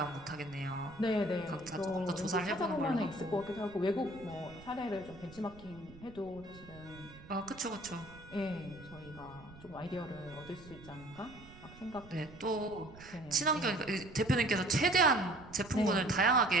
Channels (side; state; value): right; noise; rumble, 19 dB below the sound